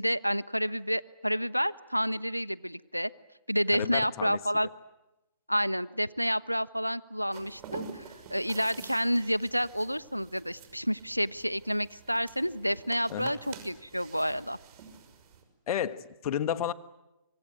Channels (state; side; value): inverted; both; correlation -0.92